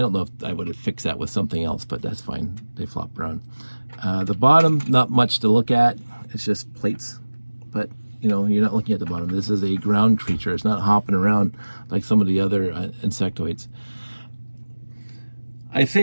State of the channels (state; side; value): inverted; both; correlation -1.00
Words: know if I would have fixed that with something else, but that's fine. They flop around. The bottom, not much to look at. It's just plates. But, you're not looking at the bottom. This is a ground creature. It's not hopping around like some of the other Insectoids. I